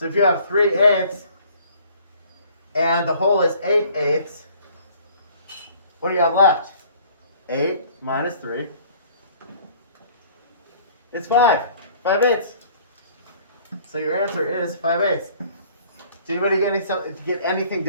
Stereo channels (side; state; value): both; inverted; correlation -0.54